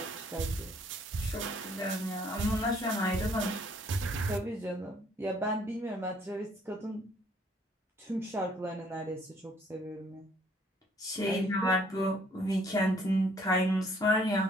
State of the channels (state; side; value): normal; both; correlation 0.62